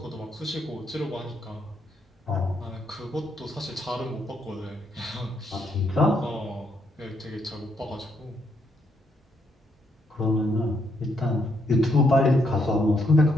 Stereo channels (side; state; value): both; normal; correlation 0.75